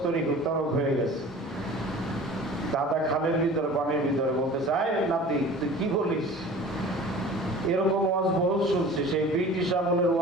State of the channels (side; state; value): both; normal; correlation 0.42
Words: তরক হয়ে গেছে। দাদা খালের ভিতরে পানির ভিতরে বলতেছে, আয় নাতি তুই কি বলিস? এরকম ওয়াজ বহুত শুনছি, সেই ব্রিটিশ আমলের